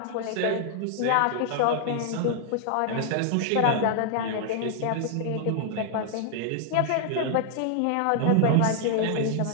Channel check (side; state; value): both; different; correlation -0.01